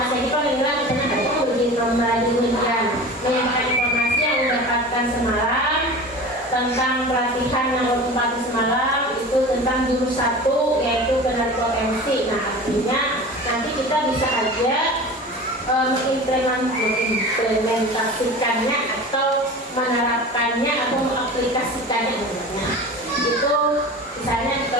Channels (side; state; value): both; normal; correlation 0.35